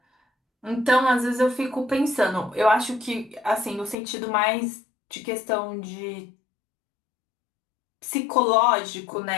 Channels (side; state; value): right; drops out; at 4.0 s